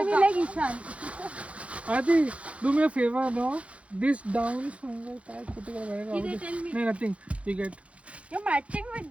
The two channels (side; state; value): left; late; 0.063 ms